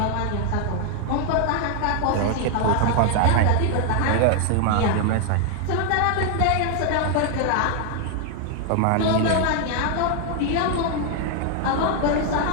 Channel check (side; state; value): both; different; correlation 0.00